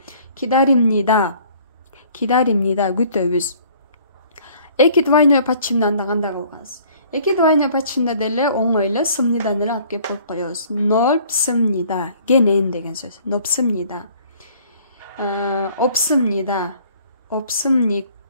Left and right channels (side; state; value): both; inverted; correlation -0.56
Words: Кидаримнида. Кидаримнида күтөбүз. Эки двойной пачымдан да кандай кылганбыз? Эки двойной пачымда деле оңой эле сымнидан эле алып келип коюп коебуз. Нопсымнида. Кенен деген сөз. Нопсымнида. Опсымнида. Опсымник.